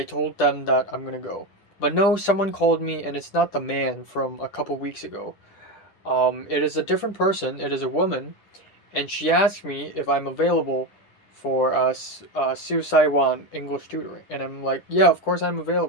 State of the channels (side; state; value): right; late; 10 ms